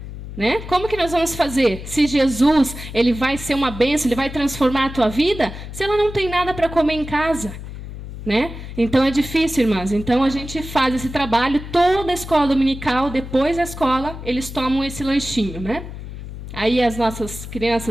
Né? Como que nós vamos fazer? Se Jesus ele vai ser uma bênção, ele vai transformar a tua vida, se ela não tem nada para comer em casa? Né? Então é difícil, irmãs. Então a gente faz esse trabalho, toda a escola dominical, depois da escola, eles tomam esse lanchinho. Né? Aí as nossas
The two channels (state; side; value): noise; left; hum, 10 dB below the sound